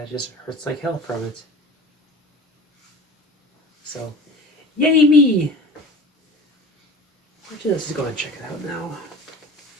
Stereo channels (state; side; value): normal; both; correlation 0.38